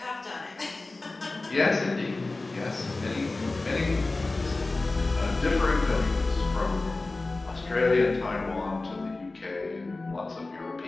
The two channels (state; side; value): quieter; right; 3.3 dB